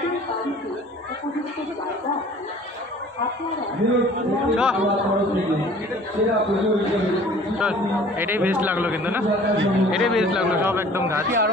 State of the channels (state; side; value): normal; both; correlation 0.50